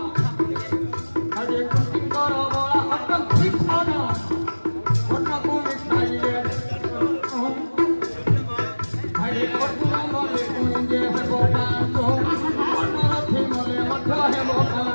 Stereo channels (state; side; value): inverted; both; correlation -1.00